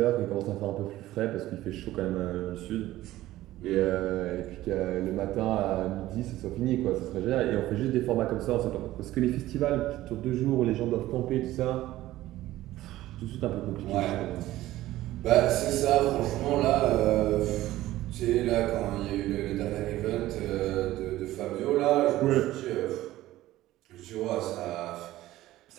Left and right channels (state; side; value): quieter; left; 15.6 dB